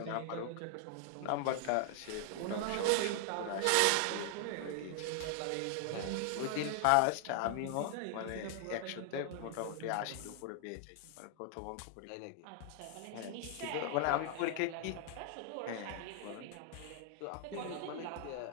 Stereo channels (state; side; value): different; both; correlation 0.00